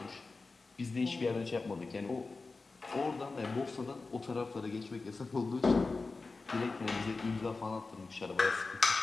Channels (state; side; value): quieter; right; 3.9 dB